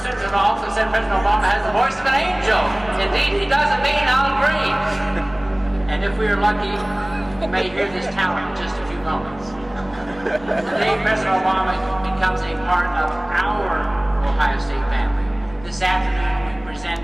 President Obama has the voice of an angel. Indeed, he doesn't mean Al Green. And if we are lucky, we may hear this talent in just a few moments. Today, President Obama becomes a part of our Ohio State family. This afternoon, we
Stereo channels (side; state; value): left; noise; rumble, 21 dB below the sound